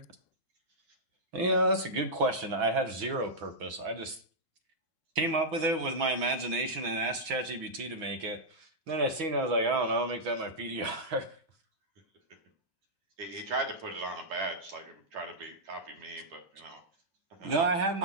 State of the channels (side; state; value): left; late; 6.1 ms